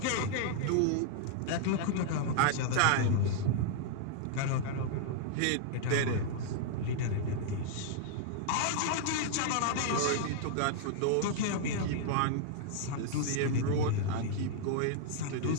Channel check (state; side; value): different; both; correlation -0.01